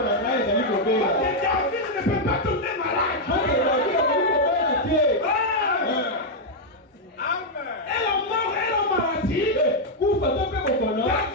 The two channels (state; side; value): normal; both; correlation -0.02